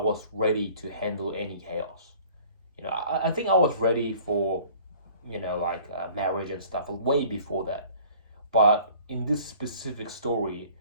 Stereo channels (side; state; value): both; inverted; correlation -0.51